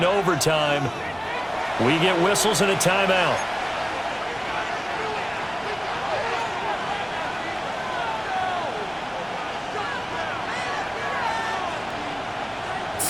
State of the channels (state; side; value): identical; both; correlation 1.00